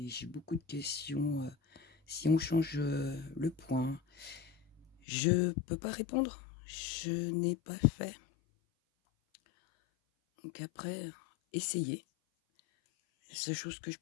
j'ai beaucoup de questions. Si on change le point, je peux pas répondre. Je n'ai pas fait. Donc après, essayez. La seule chose que je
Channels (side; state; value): right; drops out; at 4.9 s